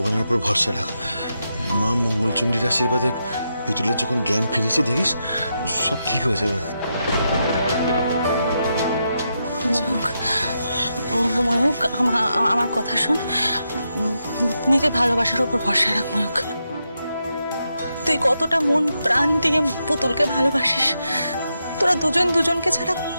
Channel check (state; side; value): inverted; both; correlation -0.84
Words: উপর ভরসা রাখ, মা মঙ্গলচণ্ডীর আশীর্বাদে পুতুলের যখন জ্ঞান ফিরেছে দেখিস সব ঠিক হয়ে যাবে। ময়ূক, আমার কথা শোন, নিজে ভালোবাসার উপর ভরসা রাখ ময়ূক। তুই কতটা মন প্রাণ দিয়ে পুতুলকে ভালোবাসিস, তোরা দুজন দুজনকে ছাড়া